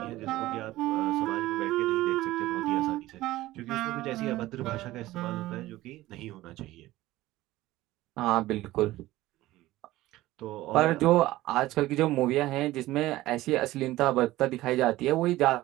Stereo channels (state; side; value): quieter; left; 16.8 dB